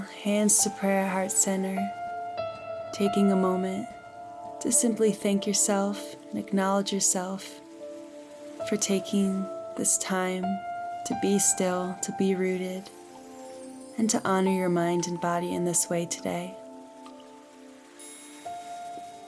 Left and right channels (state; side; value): identical; both; correlation 1.00